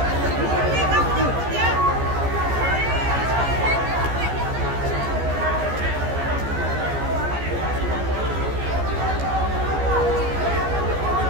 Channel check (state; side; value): late; left; 14 ms